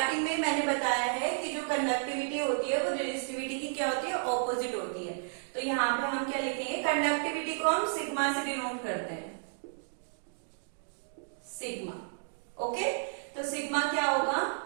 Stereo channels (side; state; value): left; silent; digital silence